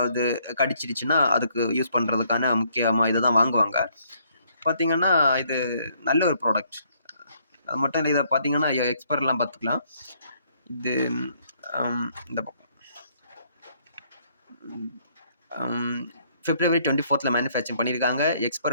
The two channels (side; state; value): both; inverted; correlation -0.67